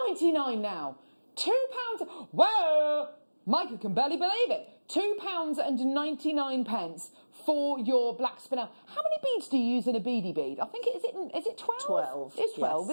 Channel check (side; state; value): both; inverted; correlation -1.00